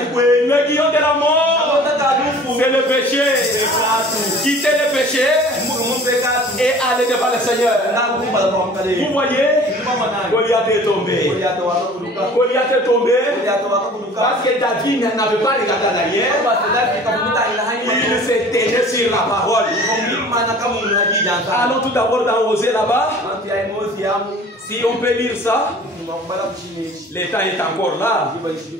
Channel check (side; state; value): both; normal; correlation 0.46